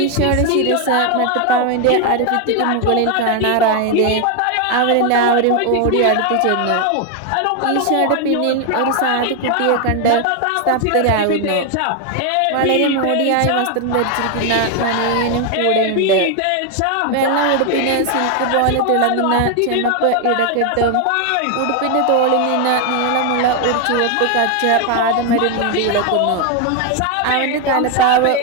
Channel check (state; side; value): different; both; correlation 0.01